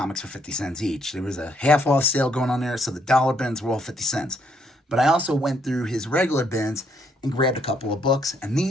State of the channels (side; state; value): both; normal; correlation 0.71